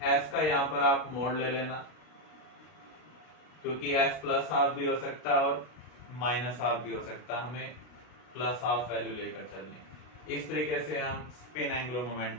s का यहां पर आप मोड ले लेना, क्योंकि s प्लस हाफ भी हो सकता है और माइनस हाफ भी हो सकता है, हमें प्लस हाफ वैल्यू लेकर चलनी। इस तरीके से हम स्पिन एंगुलर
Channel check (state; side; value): late; right; 32 ms